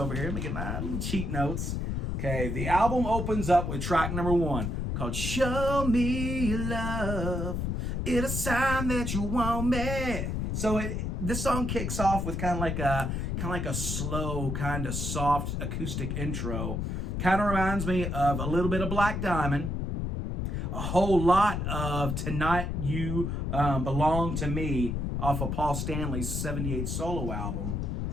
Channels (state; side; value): noise; left; rumble, 1 dB below the sound